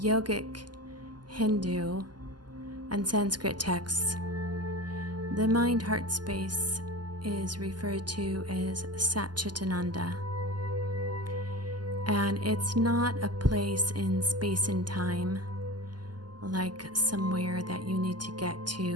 Hindu, and Sanskrit texts, the mind-heart space is referred to as Satchitananda. And it's not a place in space and time, like somewhere that you need to get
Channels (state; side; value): late; left; 0.70 ms